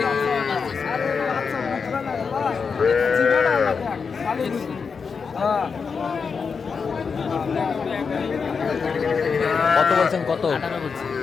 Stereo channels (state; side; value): quieter; right; 5.5 dB